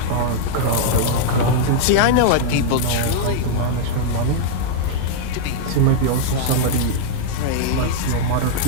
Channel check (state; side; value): different; both; correlation -0.01